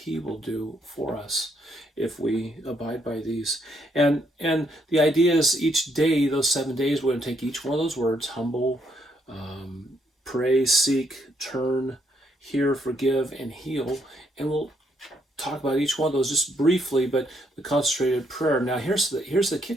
He will do for us if we abide by these. And the idea is each day, those 7 days, we're going to take each one of those words: humble, pray, seek, turn, hear, forgive, and heal. And we'll talk about each one of those just briefly, but the concentrated prayer. Now, here's the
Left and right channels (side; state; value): both; normal; correlation 0.73